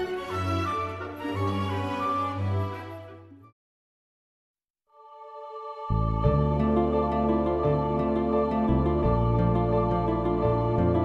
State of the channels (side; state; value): both; identical; correlation 1.00